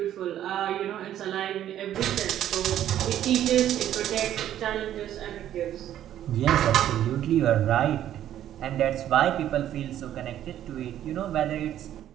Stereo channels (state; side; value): quieter; left; 11.5 dB